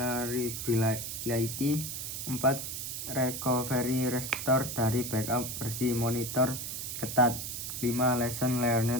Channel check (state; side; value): noise; right; hiss, 5 dB below the sound